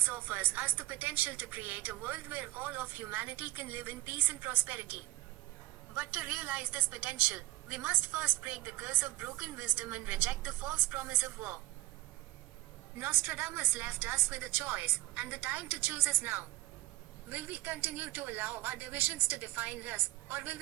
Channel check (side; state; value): left; quieter; 18.3 dB